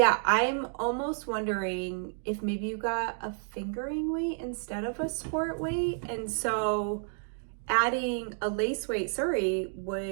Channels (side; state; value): left; silent; 58 dB below the other